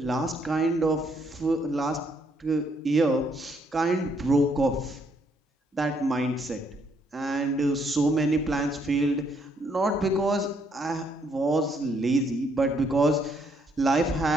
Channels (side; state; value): both; normal; correlation 0.71